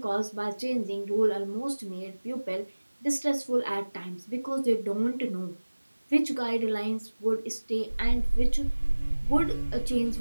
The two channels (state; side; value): inverted; both; correlation -1.00